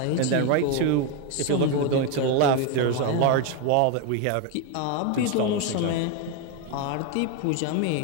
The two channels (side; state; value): both; different; correlation 0.02